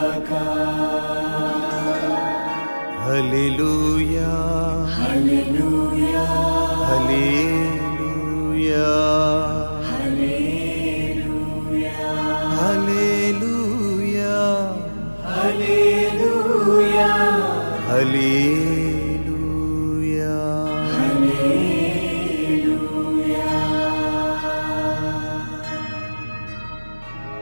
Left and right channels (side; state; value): both; inverted; correlation -1.00